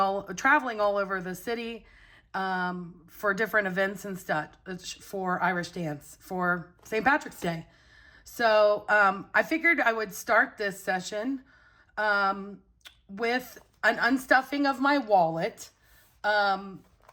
over the city for different events and stuff for Irish dance for St. Patrick's Day. So I figured I would start this session with an unstuffing of my wallet. We're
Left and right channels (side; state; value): both; identical; correlation 1.00